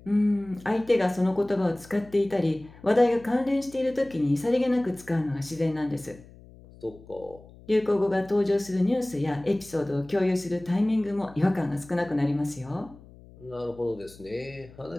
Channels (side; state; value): left; noise; hum, 22 dB below the sound